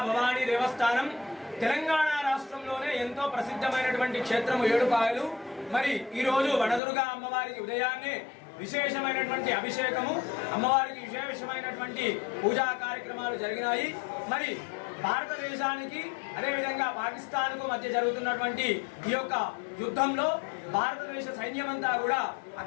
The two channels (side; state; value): right; drops out; at 6.8 s